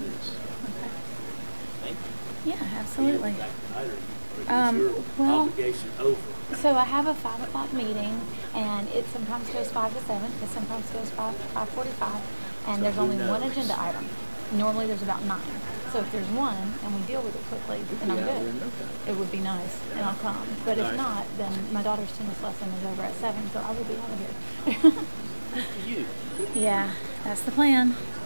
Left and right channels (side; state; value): both; inverted; correlation -1.00